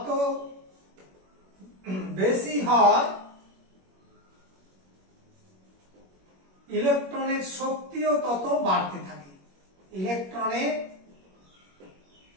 বেশি হয় ইলেকট্রনের শক্তিও তত বাড়তে থাকে। ইলেকট্রনের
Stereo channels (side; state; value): left; late; 21 ms